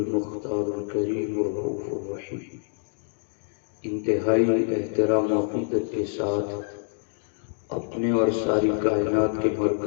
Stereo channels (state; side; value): silent; right; digital silence